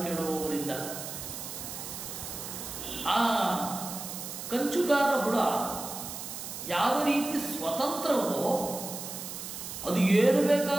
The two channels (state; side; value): noise; right; hiss, 8 dB below the sound